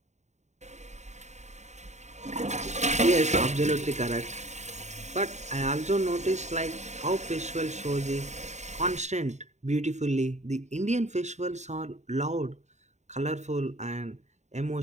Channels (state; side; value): late; left; 0.34 ms